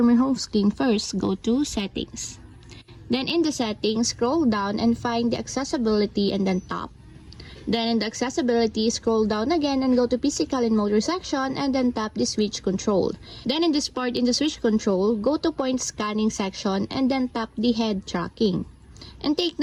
your home screen, first go to Settings. Then in the settings, scroll down and find the accessibility and then tap. Then in the accessibility, scroll down again and go to physical and motor section and then tap the switch control. Then in this part in the switch control, go to point scanning section and then tap the head tracking. And take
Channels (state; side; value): identical; both; correlation 1.00